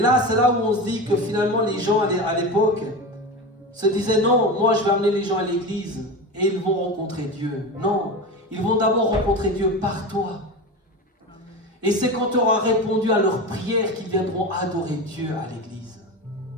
c'est là où on se dit que finalement les gens à l'époque se disaient non, moi je vais amener les gens à l'église et ils vont rencontrer Dieu. Non, ils vont d'abord rencontrer Dieu par toi. Et c'est quand tu auras répondu à leurs prières qu'ils viendront adorer Dieu à l'église.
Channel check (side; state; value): both; normal; correlation 0.25